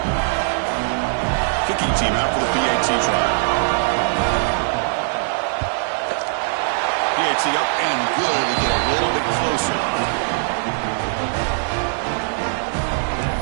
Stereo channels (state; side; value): silent; left; digital silence